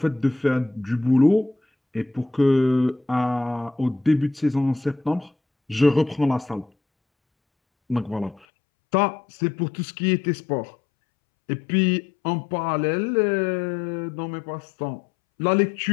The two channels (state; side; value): drops out; right; at 8.5 s